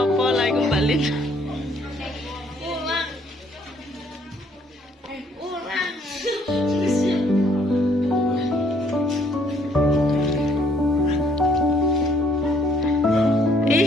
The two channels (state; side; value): normal; both; correlation 0.64